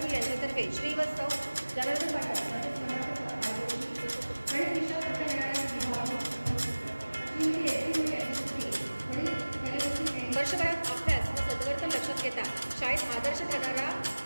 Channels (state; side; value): inverted; both; correlation -1.00